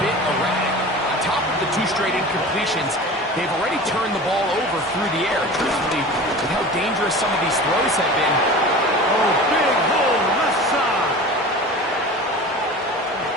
bit erratic. On top of the 2 straight incompletions, they've already turned the ball over through the air. Truthfully, with how dangerous some of these throws have been. Oh, big hole, left side.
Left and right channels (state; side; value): normal; both; correlation 0.36